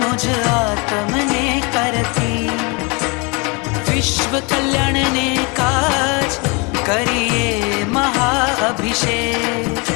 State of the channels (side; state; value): right; quieter; 29.8 dB